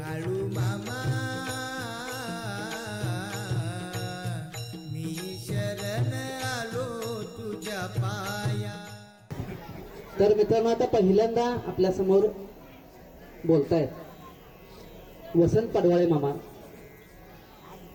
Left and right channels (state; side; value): identical; both; correlation 1.00